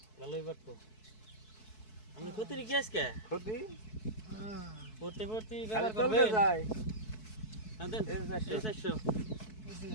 ভালোই বাটতো আমি ক্ষতি রেখে আজকে ক্ষতি পড়তে পড়তে খালি ব্যবহার চলতে করবেন যায় হ্যাঁ দেন এই 400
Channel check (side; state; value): right; late; 4.6 ms